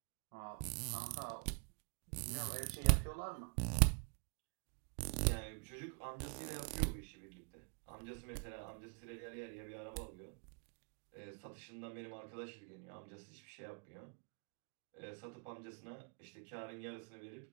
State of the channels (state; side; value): quieter; left; 36.9 dB